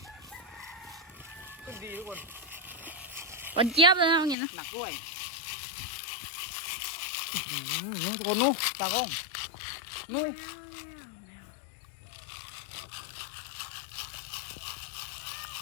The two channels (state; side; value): drops out; right; at 4.4 s